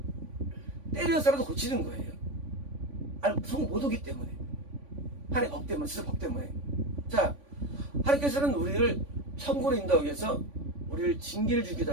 때려서라도 고치는 거예요. 천국 못 오기 때문에. 하나님 법 때문에, 진짜 법 때문에. 자, 하나님께서는 우리를 천국으로 인도하기 위해서 우리를 징계를 주기도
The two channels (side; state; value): left; late; 3.5 ms